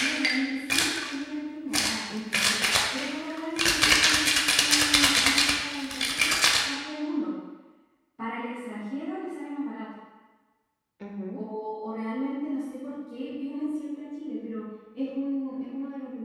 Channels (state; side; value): identical; both; correlation 1.00